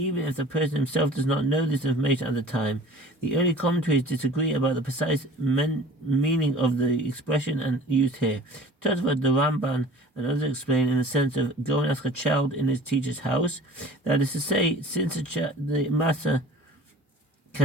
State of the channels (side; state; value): both; normal; correlation 0.45